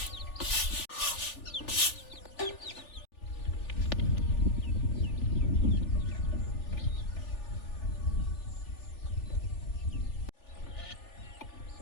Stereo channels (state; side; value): late; right; 3.4 ms